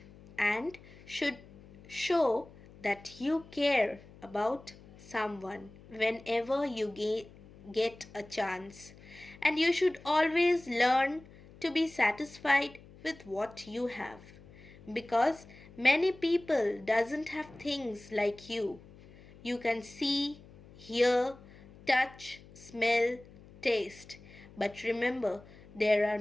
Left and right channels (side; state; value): left; noise; hum, 21 dB below the sound